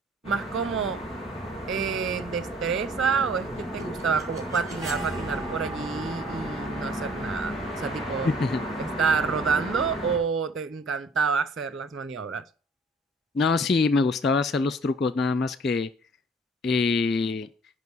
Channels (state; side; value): normal; both; correlation 0.55